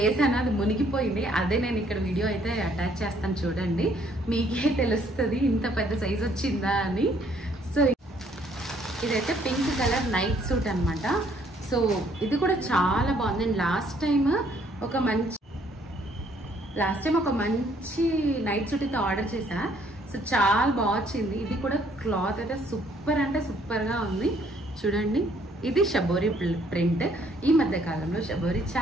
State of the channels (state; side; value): normal; both; correlation 0.65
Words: అది మునిగిపోయింది, అదే నేను ఇక్కడ వీడియో అయితే అటాచ్ చేస్తాను, చూడండి మీకే తెలుస్తుంది ఇంత పెద్ద సైజ్ వచ్చిందా అని. సో ఇదైతే పింక్ కలర్ నైట్ సూట్ అనమాట. సో ఇది కూడా చాలా బాగుంది. నేను లాస్ట్ టైం ఒక మంచి నైట్ సూట్ అయితే ఆర్డర్ చేశా. సో చాలా బాగా వచ్చింది. ఇది కూడా క్లాత్ అయితే సూపర్ అంటే సూపర్గా ఉంది. చూడండి ఇది షబోరి ప్రింట్. ఈ మధ్య కాలంలో షబోరి